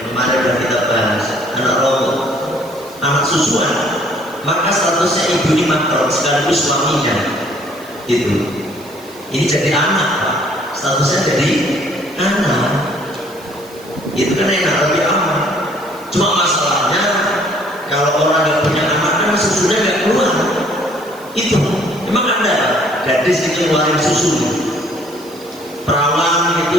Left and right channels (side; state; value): right; noise; hiss, 23 dB below the sound